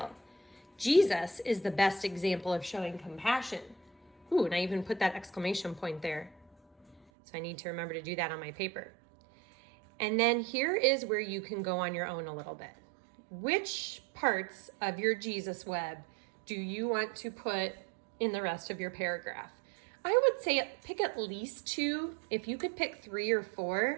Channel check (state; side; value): drops out; left; at 7.0 s